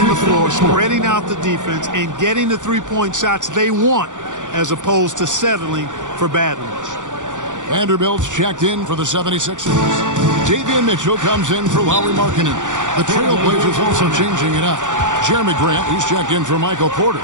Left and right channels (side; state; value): left; late; 0.86 ms